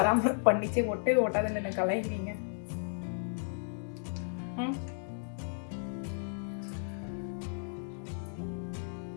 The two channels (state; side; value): silent; right; digital silence